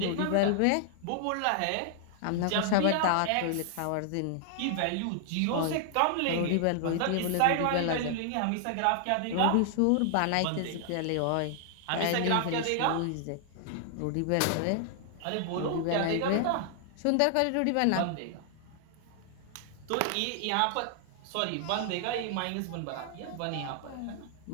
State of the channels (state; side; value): different; both; correlation -0.01